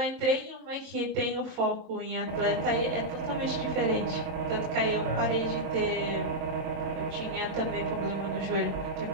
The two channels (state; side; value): late; left; 23 ms